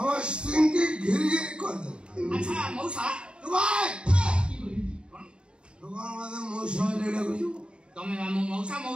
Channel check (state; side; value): late; left; 0.053 ms